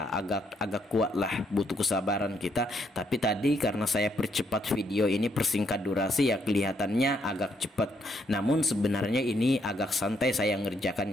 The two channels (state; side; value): normal; both; correlation 0.73